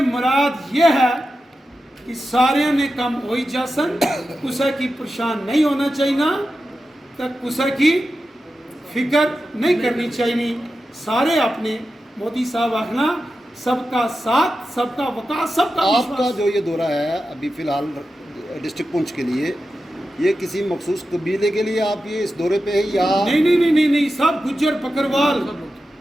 मुराद ये है कि सारे ने कम हो ही जासन, कुसा की परेशान नहीं होना चाहिए, तक कुसा की फिक्र नहीं करनी चाहिए। सारे अपने मोदी साहब आखना सबका साथ सबका विकास सबका आपका जो ये दौरा है अभी फिलहाल डिस्ट्रिक्ट पुंछ के लिए, ये किसी मखसूस कबीले के लिए आप ये इस दौरे पे है या नहीं सब गुज्जर बकरवाल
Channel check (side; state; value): both; normal; correlation 0.91